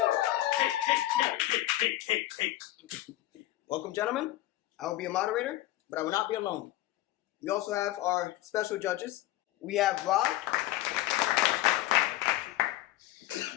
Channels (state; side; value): quieter; right; 15.7 dB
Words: Welcome, gentlemen. I will be a moderator, but I will not be alone. We also have our special judges. We have Rob